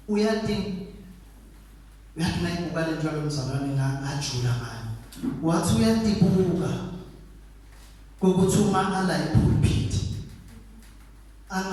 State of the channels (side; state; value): both; identical; correlation 1.00